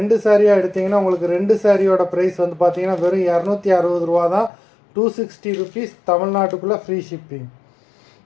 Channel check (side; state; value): right; drops out; at 4.5 s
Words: சாரியாக எடுத்திங்கன்னா உங்களுக்கு 2 சாரியோட ப்ரைஸ் வந்து பார்த்தீங்கன்னா வெறும் 260 ரூபா தான். 260 ருபீஸ், தமிழ்நாட்டுக்குள்ளே ஃப்ரீ ஷிப்பிங்.